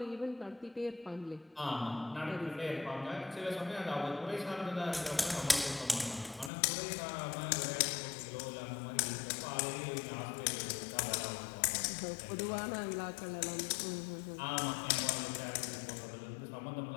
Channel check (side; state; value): right; drops out; at 6.5 s